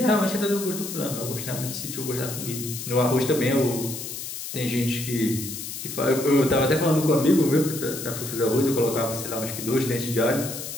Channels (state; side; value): noise; left; hiss, 8 dB below the sound